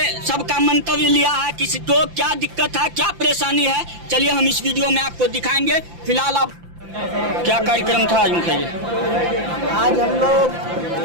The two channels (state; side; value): late; left; 5.8 ms